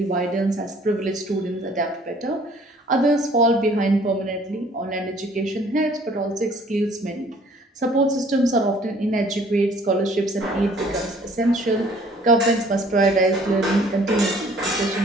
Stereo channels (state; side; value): normal; both; correlation 0.56